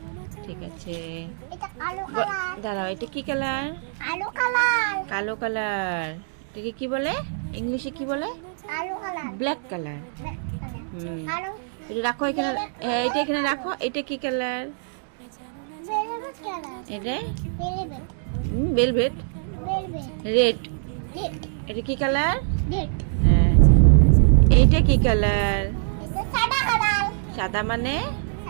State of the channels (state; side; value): silent; left; digital silence